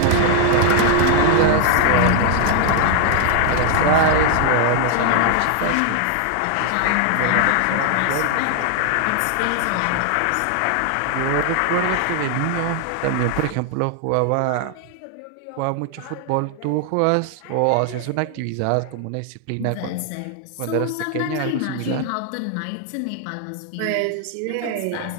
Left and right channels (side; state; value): both; different; correlation 0.00